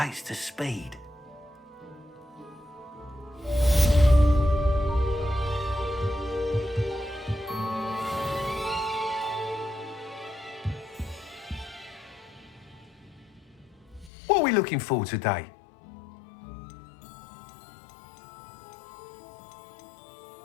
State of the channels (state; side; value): drops out; right; at 14.1 s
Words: to speed? What are we looking for today?